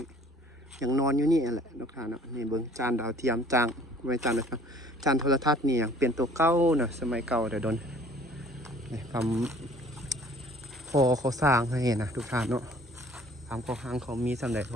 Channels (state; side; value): normal; both; correlation 0.53